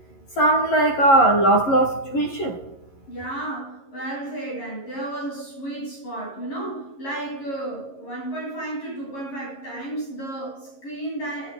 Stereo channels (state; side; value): late; right; 11 ms